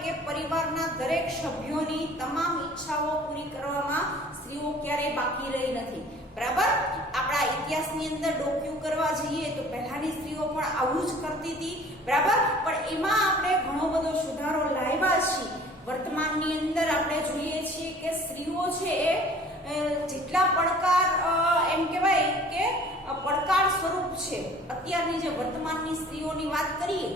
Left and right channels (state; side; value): normal; both; correlation 0.50